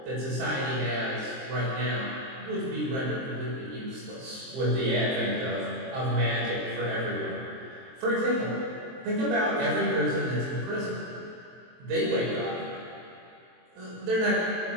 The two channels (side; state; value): left; late; 23 ms